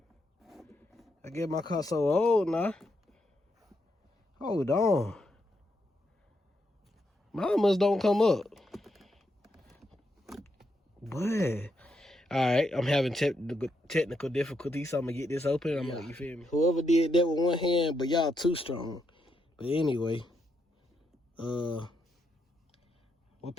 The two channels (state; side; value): normal; both; correlation 0.80